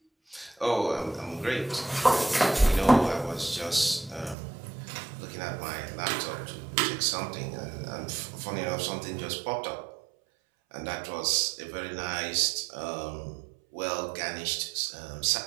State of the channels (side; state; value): left; drops out; at 4.4 s